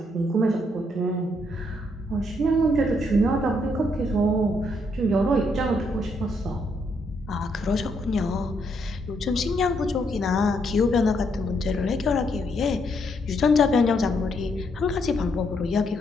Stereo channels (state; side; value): normal; both; correlation 0.74